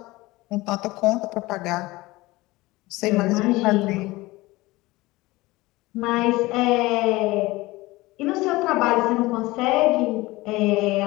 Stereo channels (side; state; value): right; quieter; 20.3 dB